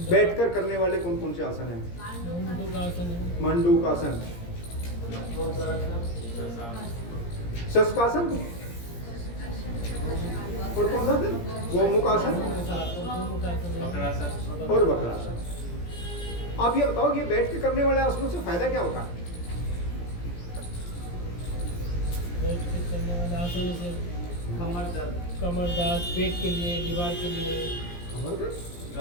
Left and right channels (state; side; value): late; right; 17 ms